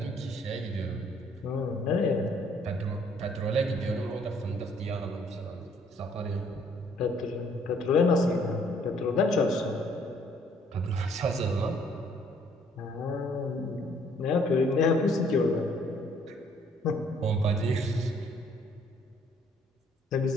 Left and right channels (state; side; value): normal; both; correlation 0.62